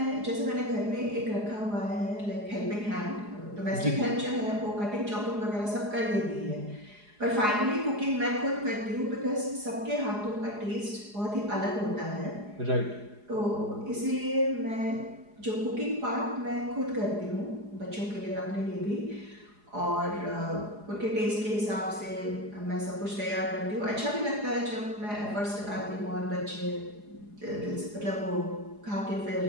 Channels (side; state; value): left; late; 4.8 ms